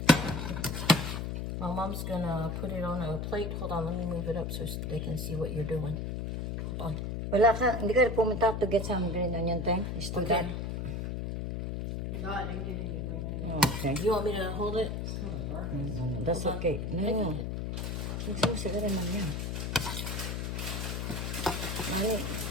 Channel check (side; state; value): left; noise; hum, 3 dB below the sound